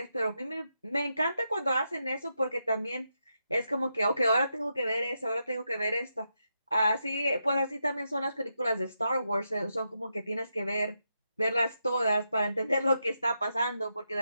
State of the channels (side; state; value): both; inverted; correlation -0.84